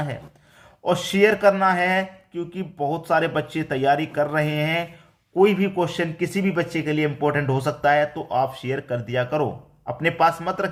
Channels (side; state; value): both; identical; correlation 1.00